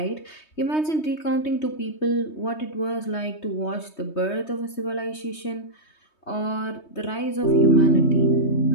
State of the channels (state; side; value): late; right; 3.2 ms